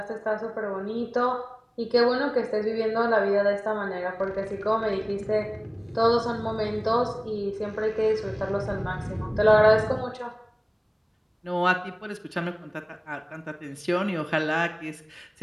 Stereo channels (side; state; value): both; identical; correlation 1.00